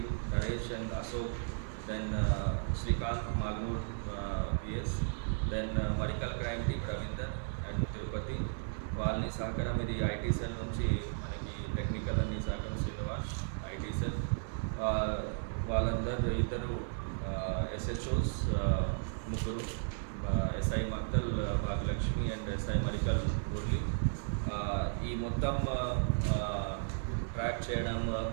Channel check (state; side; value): silent; left; 55 dB below the other